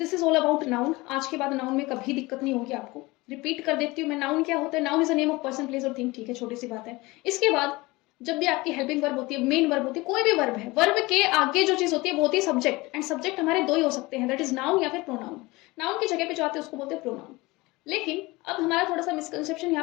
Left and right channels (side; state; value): right; quieter; 22.1 dB